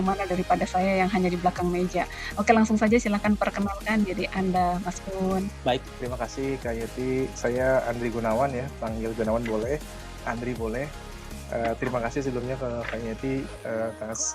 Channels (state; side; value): identical; both; correlation 1.00